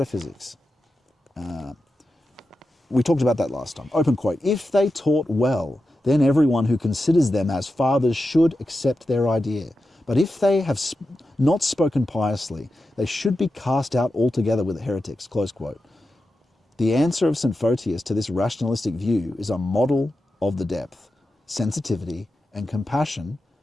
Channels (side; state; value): both; normal; correlation 0.91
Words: We talked about that last time. Open quote, "If they taught well, then everyone who considers them as fathers should accept their idea. But if they have not spoken piously, they should be cast out altogether with heretics," close quote. The answer of St. Photius to this rationalistic view is a model of the depth, sensitivity, and compassion